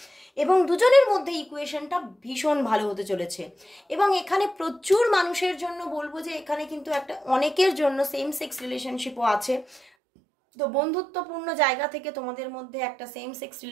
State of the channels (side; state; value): left; drops out; at 9.8 s